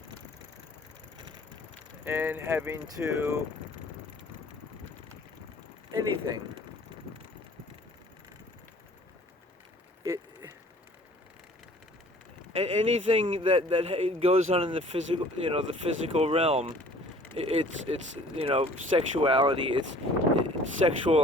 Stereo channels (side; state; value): both; normal; correlation 0.52